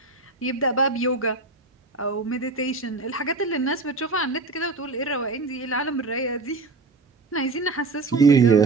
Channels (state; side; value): quieter; left; 3.5 dB